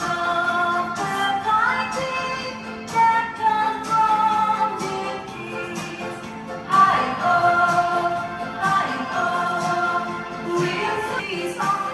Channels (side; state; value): both; identical; correlation 1.00